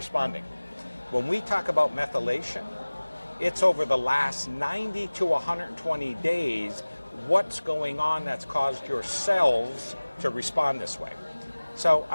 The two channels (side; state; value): both; inverted; correlation -1.00